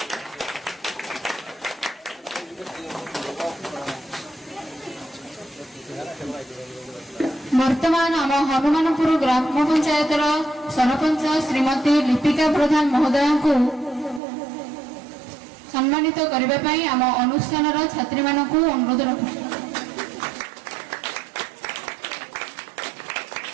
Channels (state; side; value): drops out; left; at 14.2 s